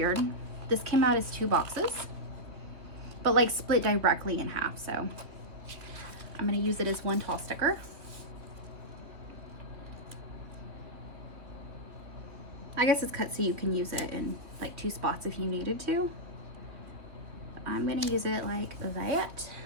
This came out as 2 boxes, but like split directly in half. So I'm gonna use it as 1 tall sticker. I guess it's cut so you can use it in like 2 spots if you needed to. But I'm gonna use it like that.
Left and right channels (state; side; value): late; left; 2.8 ms